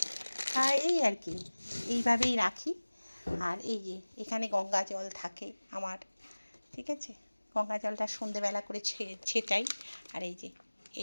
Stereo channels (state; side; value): inverted; both; correlation -1.00